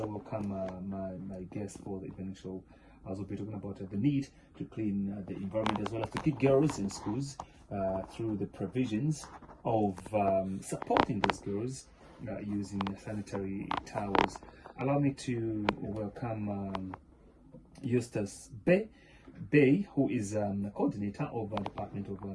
my guest for the evening show, as we'll be talking about the need to clean the environment as well as to keep girls in schools through the provisions of supporting these girls using sanitary towels. Allow me to welcome Eustace Bay, who is coordinator of the Department of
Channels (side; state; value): both; identical; correlation 1.00